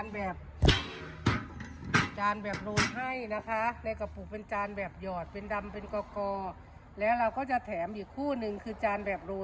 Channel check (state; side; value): identical; both; correlation 1.00